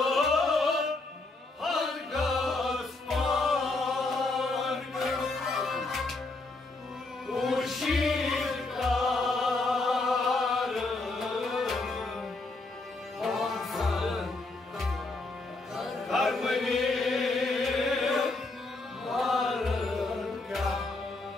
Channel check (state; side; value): quieter; right; 3.2 dB